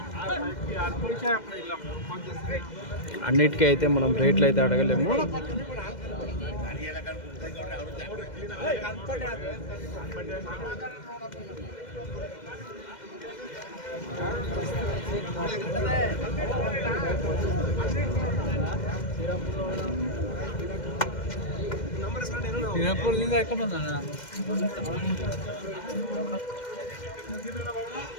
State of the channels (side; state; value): right; late; 2.1 ms